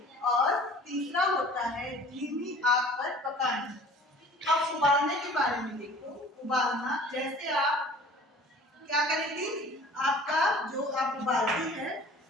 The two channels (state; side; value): normal; both; correlation 0.47